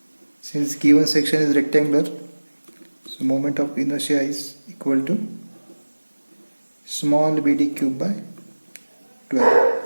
Since given section is rectangular, so moment of inertia is equal to small bd cube by 12.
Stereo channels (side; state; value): both; inverted; correlation -1.00